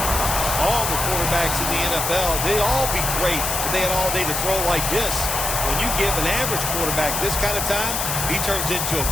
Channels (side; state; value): left; noise; hiss, 1 dB below the sound